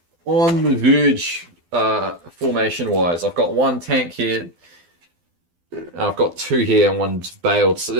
on the verge, formation-wise. I've got 1 tank here. I've got 2 here and 1's bailed. So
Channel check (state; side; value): late; left; 12 ms